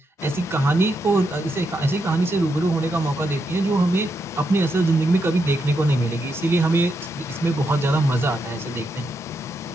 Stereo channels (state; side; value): normal; both; correlation 0.82